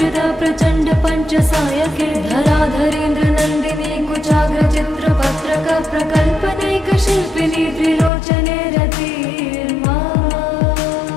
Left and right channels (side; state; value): right; drops out; at 8.1 s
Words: प्रचण्ड पञ्चसायके धराधरेन्द्रनन्दिनी कुचाग्रचित्रपत्रक प्रकल्पने शिल्पिनी त्रिलोचने रतिर्मा